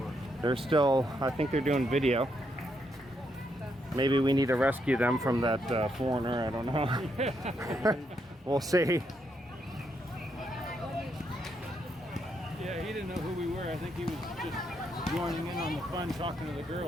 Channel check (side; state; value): both; normal; correlation 0.78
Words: They're still, I think they're doing video. Maybe we need to rescue them from that foreigner. I don't know. We'll see. Yeah, he didn't know who we were. I think he was just joining in on the fun, talking to the